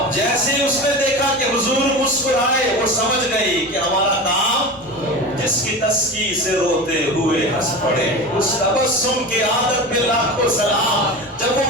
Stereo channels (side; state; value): both; normal; correlation 0.29